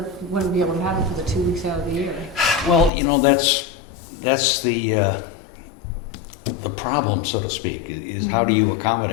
wouldn't be able to have it for the 2 weeks out of the year? Well, that's the problem, so to speak, is how do you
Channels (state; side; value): drops out; right; at 2.9 s